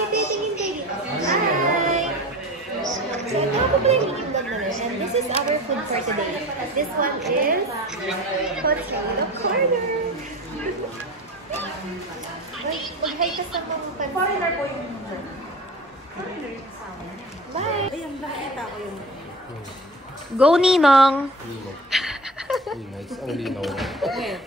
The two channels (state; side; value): normal; both; correlation 0.34